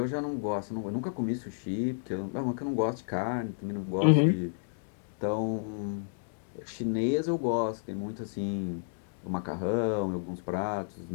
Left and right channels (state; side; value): silent; right; digital silence